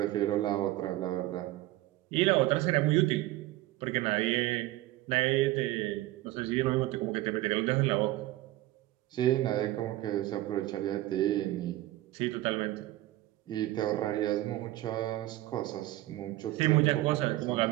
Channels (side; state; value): left; quieter; 16.5 dB